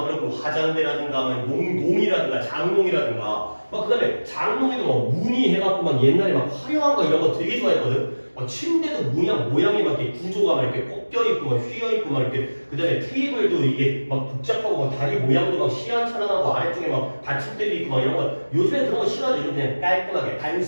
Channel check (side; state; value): both; inverted; correlation -1.00